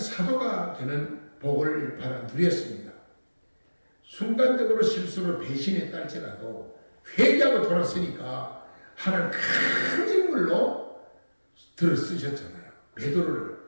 되는 복을 받아 누렸습니다. 순간적으로 실수로 배신했다 할지라도 회개하고 돌았으니까 하나님 큰 인물로 들어 쓰셨잖아요. 베드로를,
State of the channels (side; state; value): both; inverted; correlation -1.00